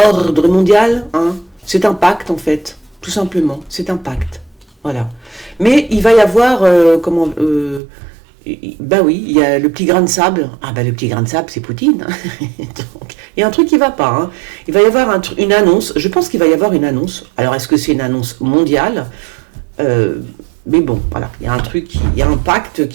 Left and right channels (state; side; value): drops out; left; at 7.8 s